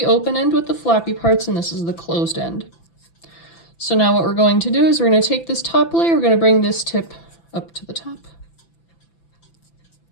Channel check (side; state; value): right; late; 5.9 ms